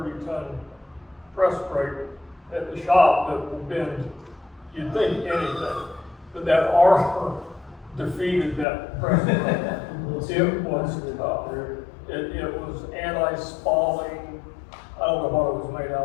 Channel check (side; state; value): right; drops out; at 8.7 s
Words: press brake at the shop that will bend, you'd think anything, but that armor defeated that press brake. It was tough. It was anti-spalling. I don't know what it was made